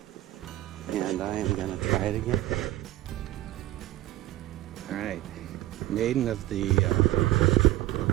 And I am gonna try it again. All right, maiden of the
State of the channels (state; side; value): quieter; left; 15.4 dB